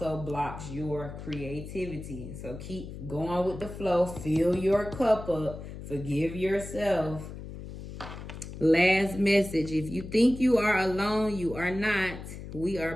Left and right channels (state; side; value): noise; left; hum, 11 dB below the sound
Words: blocks your creativity. So keep going with the flow. Fill your cup up. Forgive yourself. Last message. If you think you are alone, you are not. We are